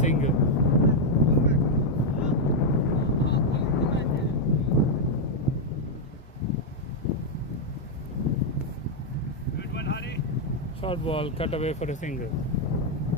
Short ball cut away for a single.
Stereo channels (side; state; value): both; normal; correlation -0.01